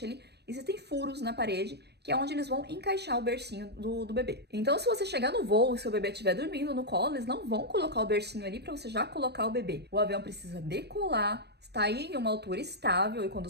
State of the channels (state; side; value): late; left; 0.48 ms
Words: ali, existem furos na parede, que é onde eles vão encaixar o bercinho do bebê. Então, se você chegar no voo e seu bebê estiver dormindo no colo, eles não vão colocar o bercinho ali pra você já colocar o bebê. O avião precisa decolar, está aí em uma altura estável, e quando